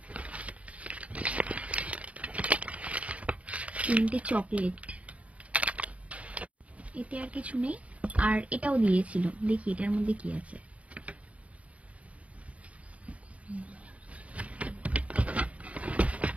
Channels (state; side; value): late; left; 0.066 ms